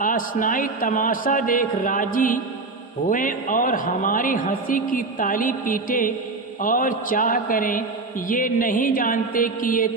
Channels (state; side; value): quieter; left; 3.6 dB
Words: आसनाई तमाशा देख राजी हुए और हमारी हंसी की ताली पीटे और चाह करें। ये नहीं जानते कि ये